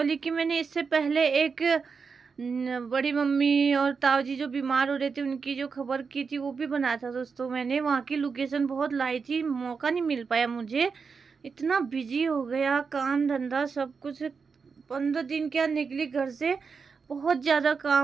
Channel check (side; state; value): left; quieter; 5.4 dB